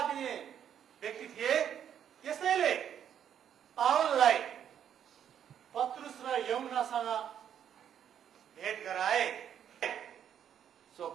दिने व्यक्ति थिए। त्यसैले पावललाई पत्रुस र यूहन्नासँग भेट गराए। So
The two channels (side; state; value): left; quieter; 9.2 dB